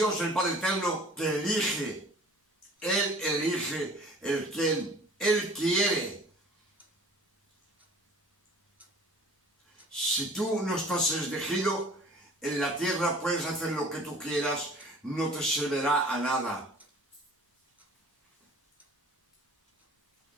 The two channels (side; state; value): both; normal; correlation 0.48